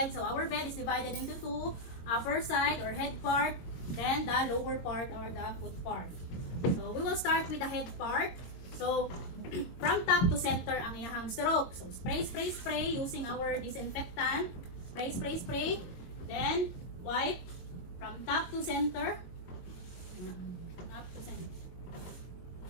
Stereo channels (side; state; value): right; late; 22 ms